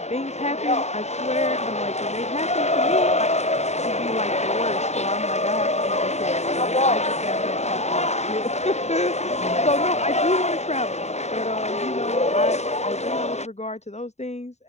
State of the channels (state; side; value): late; right; 0.32 ms